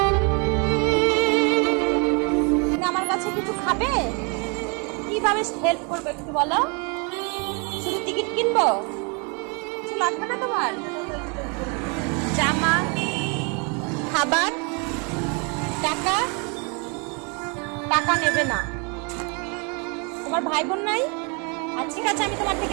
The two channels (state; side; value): quieter; left; 33.7 dB